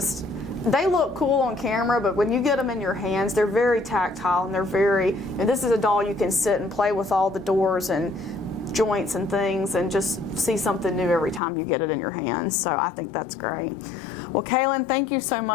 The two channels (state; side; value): drops out; right; at 11.4 s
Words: they look cool on camera, but when you get them in your hands, they're very tactile, and and this is a doll you can sit and play with all the doors and joints and things and just see something new every time you get it in your hands. So I think that's great. Well, Kailyn, thank you so